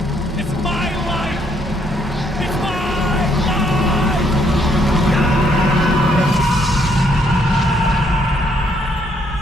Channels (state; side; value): normal; both; correlation 0.70